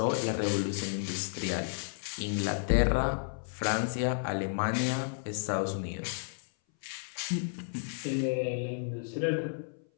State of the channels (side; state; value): right; silent; 56 dB below the other